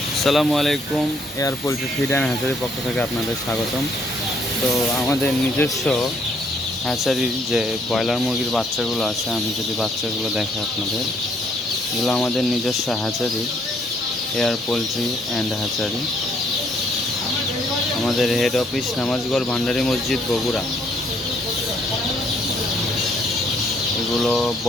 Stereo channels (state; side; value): normal; both; correlation 0.67